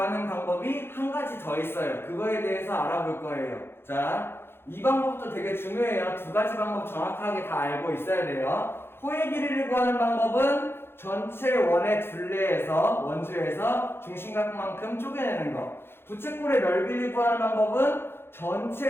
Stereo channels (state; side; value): late; right; 0.11 ms